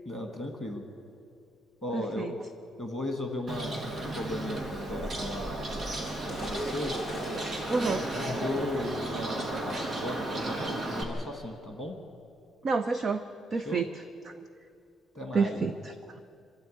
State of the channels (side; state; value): both; normal; correlation 0.76